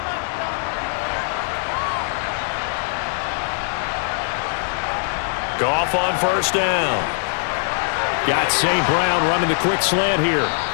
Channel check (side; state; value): right; silent; digital silence